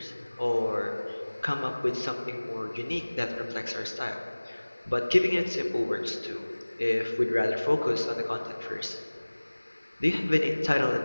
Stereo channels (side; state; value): both; inverted; correlation -1.00